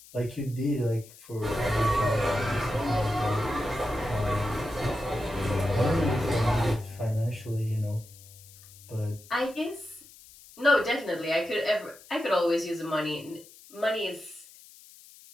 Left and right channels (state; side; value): noise; left; hiss, 21 dB below the sound